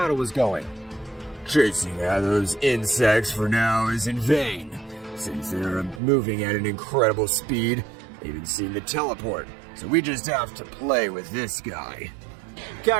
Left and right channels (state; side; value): drops out; left; at 6.0 s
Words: was going. Chasing after those insects for now is in vain, since they're moving at an incredible speed. They even seem to teleport, so we just have to play with this guy.